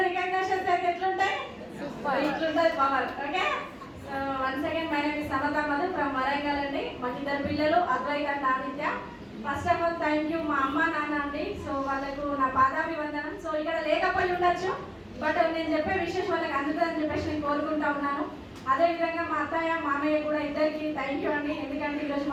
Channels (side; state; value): both; identical; correlation 1.00